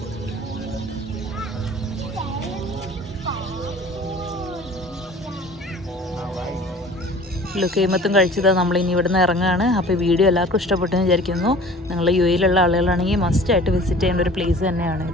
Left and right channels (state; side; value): normal; both; correlation 0.45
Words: ലുക്കൈമത്തും കഴിച്ചത് നമ്മളിനി ഇവിടുന്ന് ഇറങ്ങുകയാണ്. അപ്പോൾ വീഡിയോ എല്ലാവർക്കും ഇഷ്ടപ്പെട്ടെന്ന് വിചാരിക്കുന്നു. നിങ്ങൾ യു എയിലുള്ള ആളുകളാണെങ്കിൽ മസ്റ്റായിട്ട് വിസിറ്റ് ചെയ്യേണ്ട ഒരു പ്ലേസ്